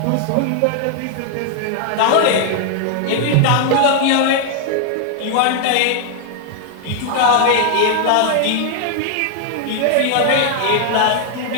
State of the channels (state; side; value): different; both; correlation 0.00